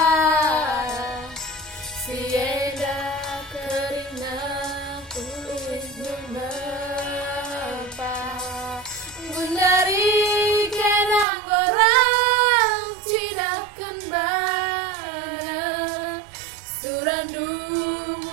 Sienda kerina kulit menapa Gundari kenang orang tidak kembali Surandu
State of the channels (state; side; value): drops out; left; at 11.2 s